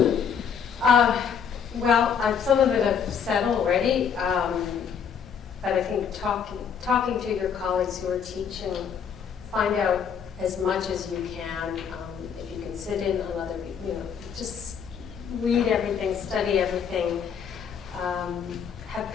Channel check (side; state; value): right; quieter; 7.2 dB